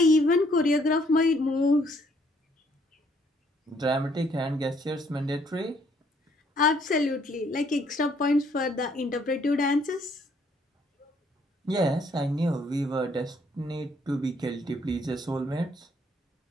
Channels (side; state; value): both; normal; correlation 0.66